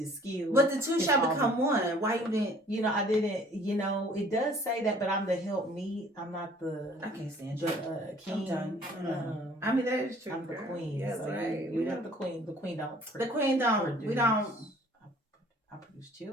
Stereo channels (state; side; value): normal; both; correlation 0.54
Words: skill. but the two shall become one. Why you didn't? I didn't. It does say that, but I'm the help me. I'm not the. I can't stand you. King. I mean that is true. I'm the queen. Yes, so right. You're not the queen. The queen don't. The queen don't. We don't. I produce